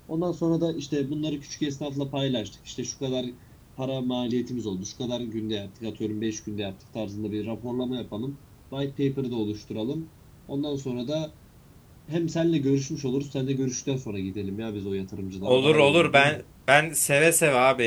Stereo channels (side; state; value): both; identical; correlation 1.00